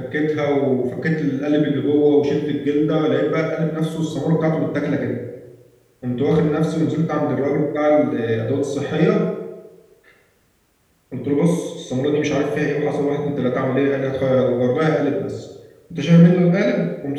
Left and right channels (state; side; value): identical; both; correlation 1.00